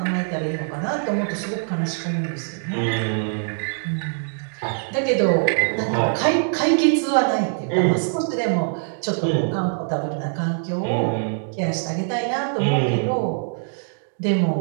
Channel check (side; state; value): left; silent; digital silence